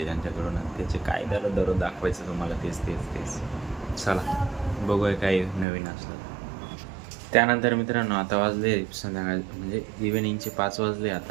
त्यांच्याकडून. त्याचे काय झालं दररोज दाखवायचं तुम्हाला तेच. चला बघूया काय नवीन असलं. त्यानंतर मित्रांनो आता वाजले संध्याकाळ म्हणजे इव्हिनिंगचे 5 वाजले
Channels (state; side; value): drops out; left; at 5.7 s